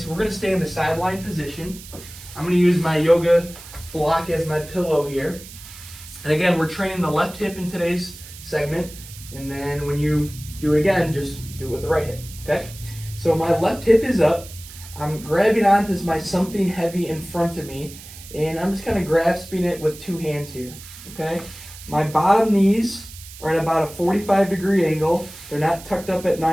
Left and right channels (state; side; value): noise; right; hiss, 16 dB below the sound